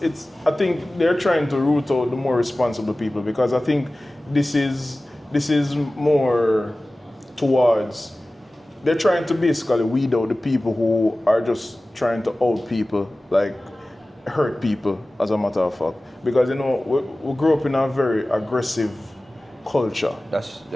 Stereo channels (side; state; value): both; normal; correlation 0.97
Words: I think they're trying to root out the more responsible people, because I think this is more towards. They're trying to basically weed out the people who are just trying to out people, like hurt people, as a matter of fact. Because, you know, we grew up in a very aggressive culture.